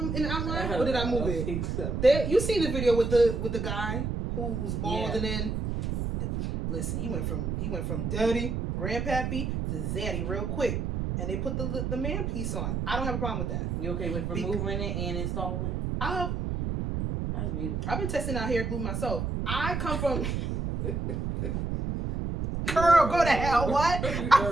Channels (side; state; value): right; noise; rumble, 2 dB below the sound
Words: in the outline, or did I move it? Think so. You seen the video with the guy who was bald, and then listen, he went from dirty grandpappy to zaddy real quick, and they put the man piece on. I don't have a problem with that. You okay with removing it and installing? That's beautiful. I've been testing out hair glue myself. I come from. Girl, go to hell. What?